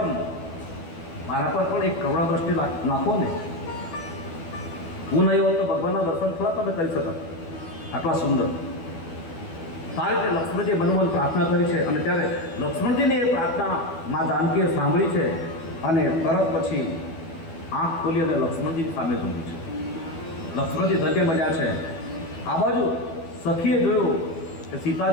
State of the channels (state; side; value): late; right; 12 ms